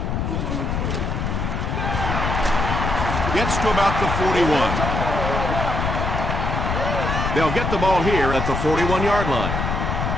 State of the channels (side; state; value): left; noise; rumble, 1 dB below the sound